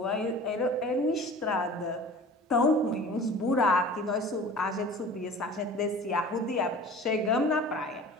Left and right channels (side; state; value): both; normal; correlation 0.41